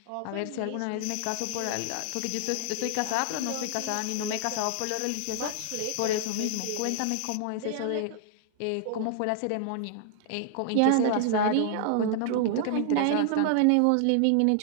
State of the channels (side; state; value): both; different; correlation 0.00